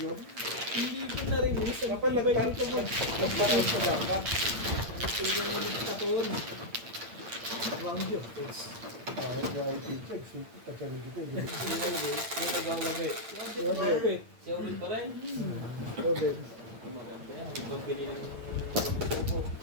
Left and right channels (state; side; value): late; left; 8.8 ms